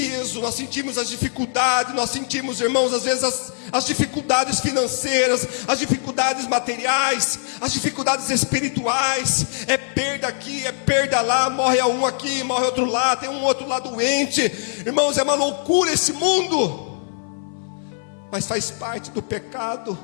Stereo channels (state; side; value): silent; right; 60 dB below the other